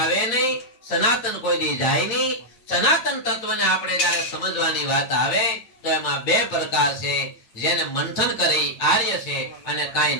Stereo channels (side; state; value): right; late; 8.7 ms